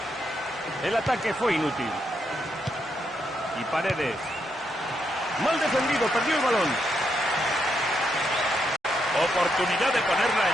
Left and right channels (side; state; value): both; normal; correlation 0.80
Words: El ataque fue inútil. Y Paredes. Mal defendido, perdió el balón. Oportunidad de ponerla